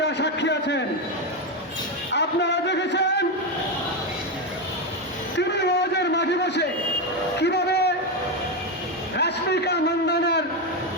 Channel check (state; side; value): normal; both; correlation 0.09